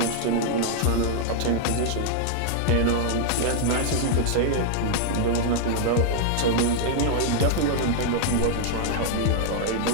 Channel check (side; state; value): both; different; correlation -0.01